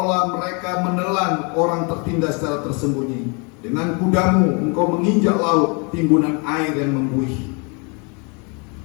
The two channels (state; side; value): quieter; right; 33.3 dB